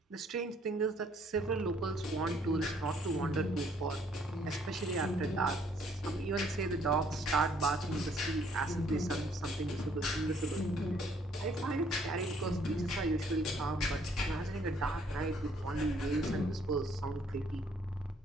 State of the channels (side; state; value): both; normal; correlation 0.64